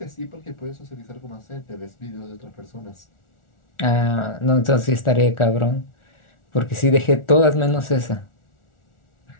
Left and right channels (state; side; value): late; right; 1.4 ms